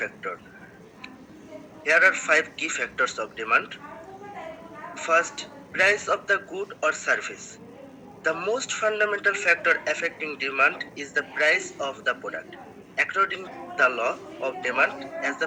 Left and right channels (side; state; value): both; identical; correlation 1.00